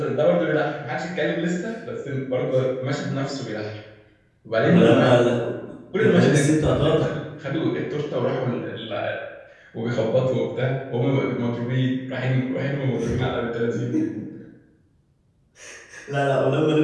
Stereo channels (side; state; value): both; identical; correlation 1.00